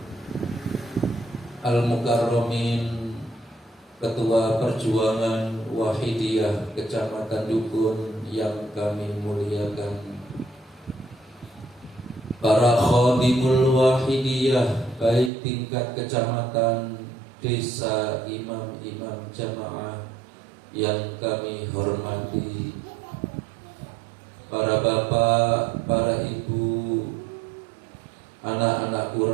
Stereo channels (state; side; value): drops out; left; at 15.3 s